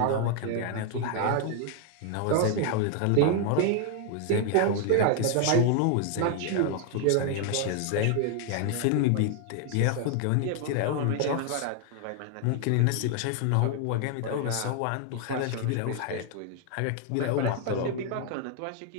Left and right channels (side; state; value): both; different; correlation 0.00